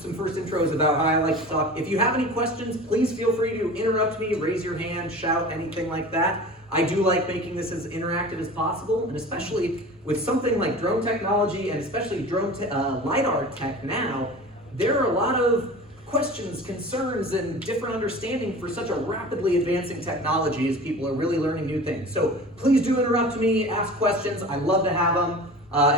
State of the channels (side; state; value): both; normal; correlation 0.37